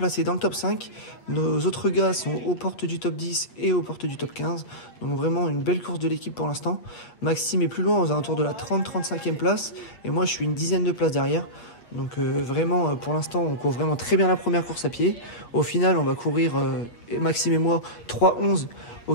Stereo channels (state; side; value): late; right; 8.4 ms